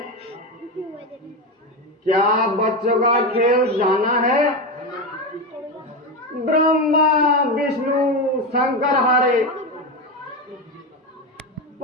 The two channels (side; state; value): both; normal; correlation 0.15